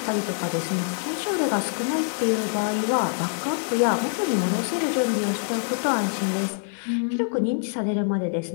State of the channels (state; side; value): silent; right; digital silence